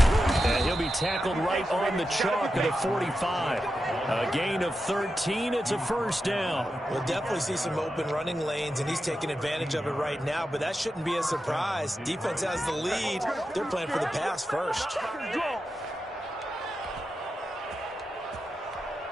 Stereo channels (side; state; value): both; normal; correlation 0.90